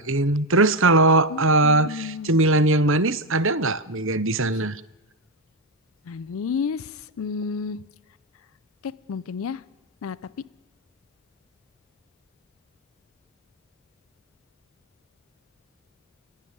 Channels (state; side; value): normal; both; correlation 0.08